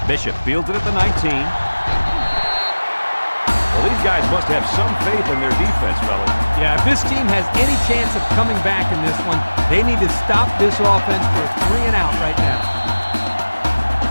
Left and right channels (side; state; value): both; inverted; correlation -1.00